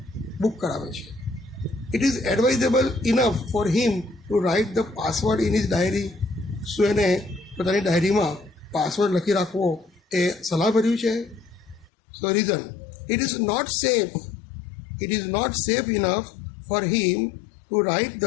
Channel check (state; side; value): drops out; right; at 11.9 s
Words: બુક કરાવે છે. It is advisable enough for him to write the password in his diary. શું એને પોતાની ડાયરીમાં પાસવર્ડ લખી રાખવો એ સલાહભર્યું છે? So reason, it is not safe enough for him to write